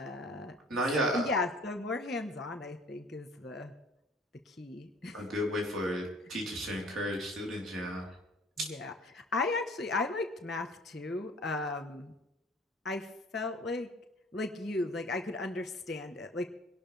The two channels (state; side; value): normal; both; correlation 0.50